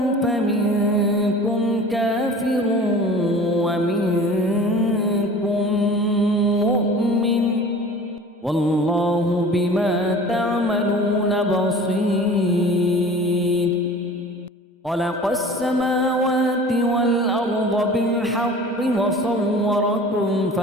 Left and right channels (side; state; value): both; normal; correlation 0.42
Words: فمنكم كافر ومنكم مؤمن، والله بما تعملون بصير. خلق السماوات والأرض بالحق وصوركم